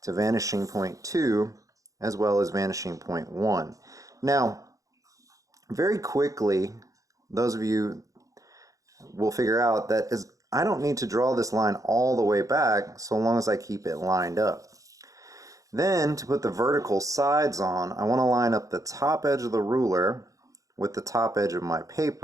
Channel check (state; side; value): late; left; 0.16 ms